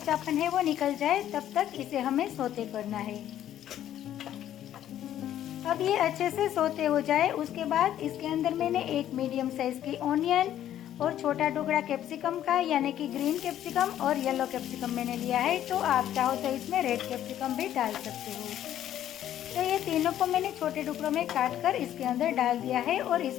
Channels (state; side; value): quieter; right; 11.5 dB